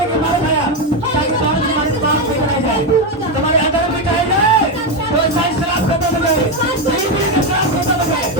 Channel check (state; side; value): normal; both; correlation 0.08